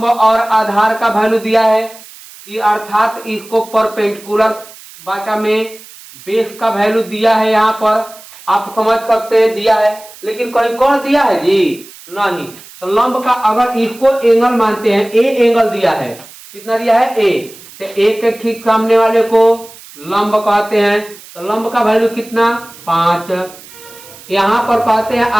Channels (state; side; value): noise; right; hiss, 20 dB below the sound